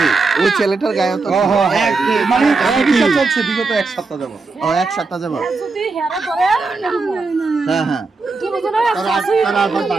ওই ছেলেটার গায়ে তো চলছে বিগত এক সপ্তাহ যাবো। ও এক সপ্তাহ যাবো। হ্যাঁ হ্যাঁ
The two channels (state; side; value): quieter; left; 4.0 dB